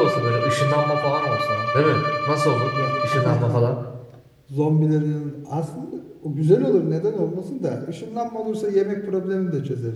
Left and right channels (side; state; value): both; identical; correlation 1.00